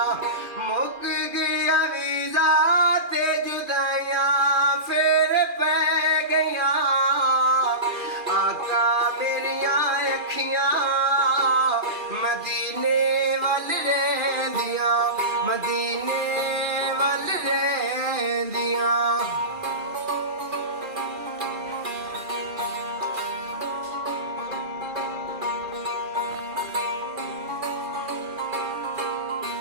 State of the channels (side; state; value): left; late; 2.4 ms